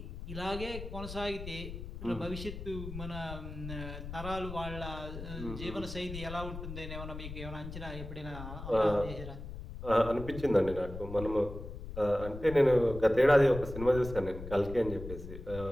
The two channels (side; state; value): left; noise; rumble, 9 dB below the sound